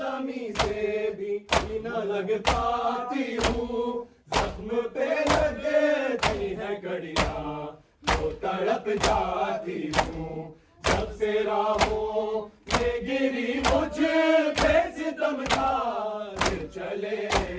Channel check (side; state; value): both; identical; correlation 1.00